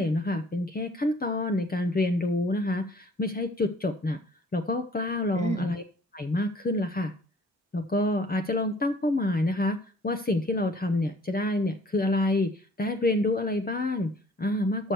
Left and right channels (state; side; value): normal; both; correlation 0.56